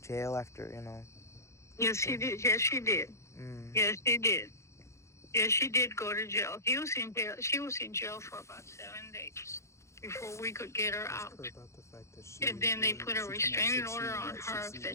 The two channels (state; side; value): late; right; 0.14 ms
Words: after, Yes, she did. Yes, she did. Yes, she did. Yes, she did go to jail. He was in jail. She was in jail for about 7 days before we could get her out. And then they put a restraining order on her